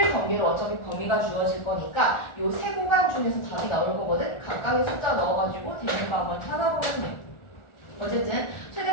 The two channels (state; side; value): late; right; 1.4 ms